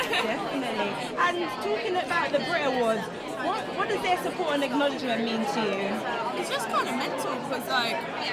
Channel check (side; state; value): both; identical; correlation 1.00